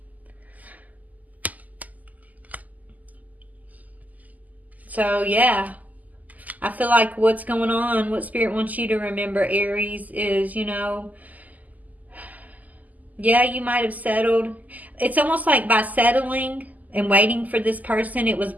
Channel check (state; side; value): late; left; 0.079 ms